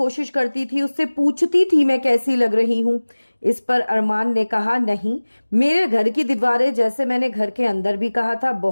करती थी, उससे पूछती थी मैं कैसी लग रही हूं। इस पर अरमान ने कहा नहीं, मेरे घर की दीवारें, जैसे मैंने घर के अंदर भी कहा था,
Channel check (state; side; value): inverted; both; correlation -1.00